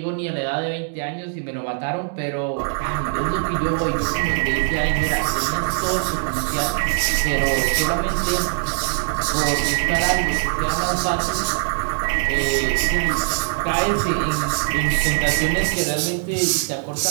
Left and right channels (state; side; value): silent; left; 65 dB below the other